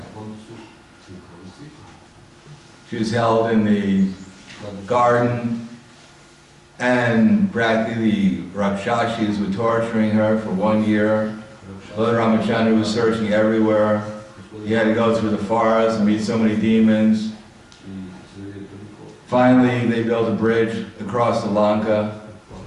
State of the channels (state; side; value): identical; both; correlation 1.00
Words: She was held in the garden, and practically the Rakshashis were torturing her for 1 year. Lord Ramachandra was searching everywhere. He had to go through the forest and meet so many demons. Finally, they built a bridge across the Lanka,